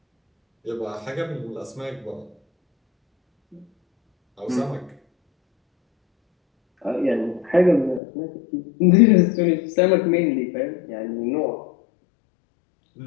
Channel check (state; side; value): drops out; right; at 8.0 s